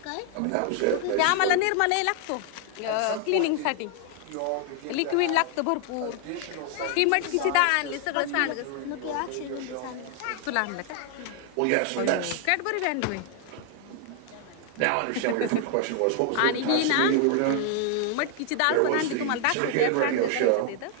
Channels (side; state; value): both; different; correlation 0.00